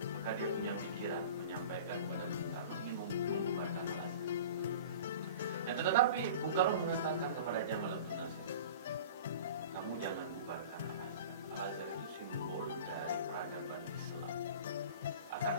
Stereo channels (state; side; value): inverted; both; correlation -0.39